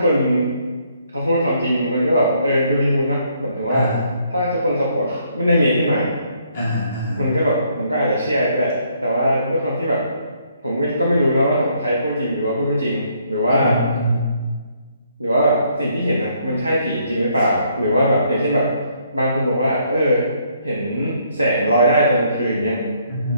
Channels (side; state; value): both; inverted; correlation -0.69